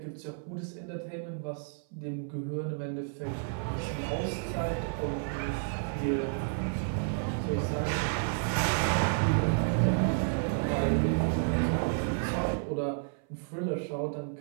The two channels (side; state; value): left; silent; 57 dB below the other